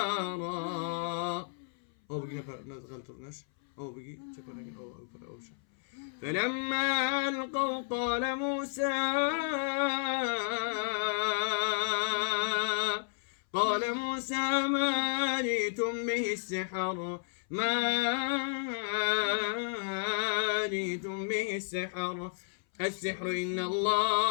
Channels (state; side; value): silent; right; 56 dB below the other